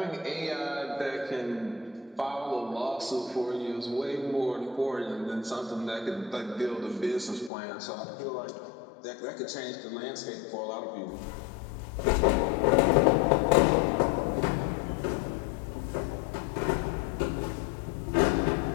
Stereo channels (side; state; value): right; drops out; at 7.5 s